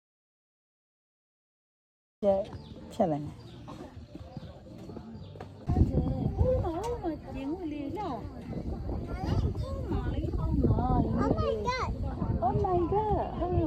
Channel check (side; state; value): both; identical; correlation 1.00